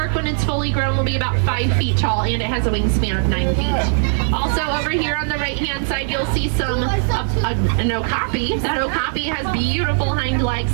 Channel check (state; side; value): silent; left; digital silence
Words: when it's fully grown, will be about 5 feet tall, and it has a wingspan of 9 feet. Also, over here on the right-hand side, you'll see an okapi. That okapi has beautiful hind legs,